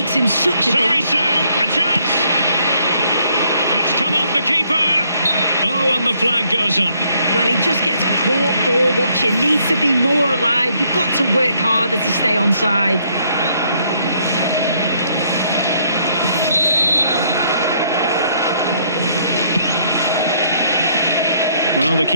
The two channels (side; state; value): both; inverted; correlation -0.69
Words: him such a... Sorry, Sue, a chance! And it's come off the keeper! Oh, and the flag goes up. Well, he just gets caught ball watching. Needs to be more alive. You've got to work harder to stay onside. Well, the